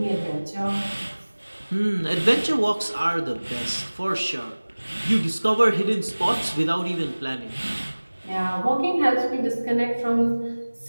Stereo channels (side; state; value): both; inverted; correlation -1.00